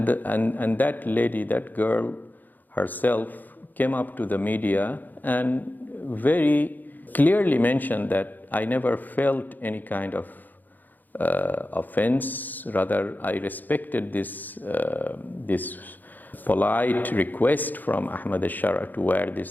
that lady, that girl herself, came up to the media and very clearly mentioned that I never felt any kind of offense. Rather, I respected this polite request from Ahmed al-Sharar to wear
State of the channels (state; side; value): late; right; 0.085 ms